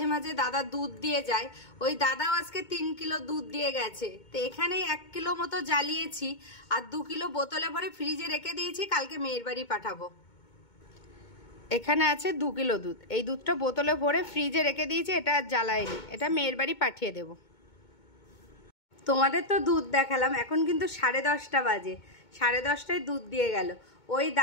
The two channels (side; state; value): right; late; 2.2 ms